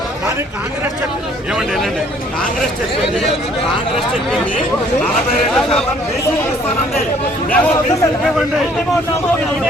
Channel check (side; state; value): both; normal; correlation 0.60